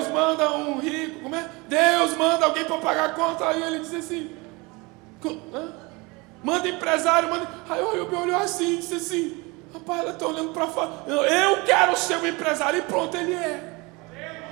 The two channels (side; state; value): left; quieter; 25.8 dB